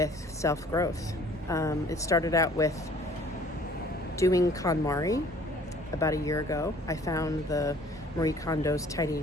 self-growth. It started out with doing KonMari about a year ago. I found the Marie Kondo's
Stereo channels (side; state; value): both; normal; correlation 0.54